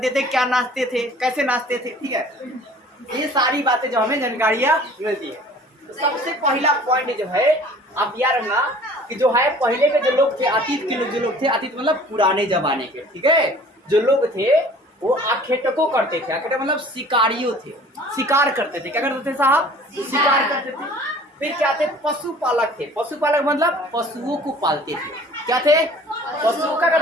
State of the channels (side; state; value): both; normal; correlation 0.49